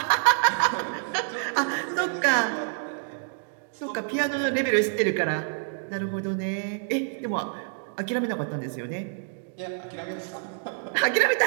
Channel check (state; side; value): silent; left; digital silence